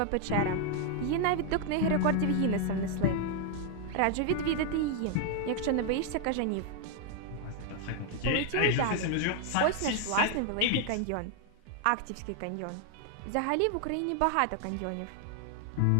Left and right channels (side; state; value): both; different; correlation 0.00